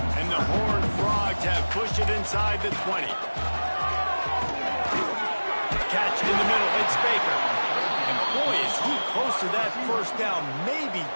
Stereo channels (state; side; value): inverted; both; correlation -1.00